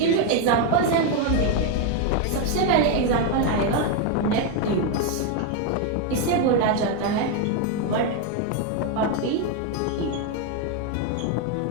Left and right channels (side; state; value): both; different; correlation 0.02